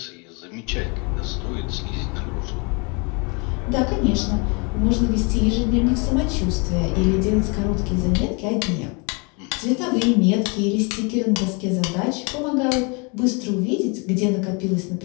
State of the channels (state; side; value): quieter; right; 32.0 dB